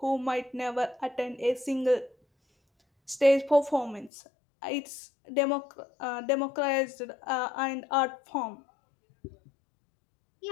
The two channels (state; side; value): drops out; right; at 4.1 s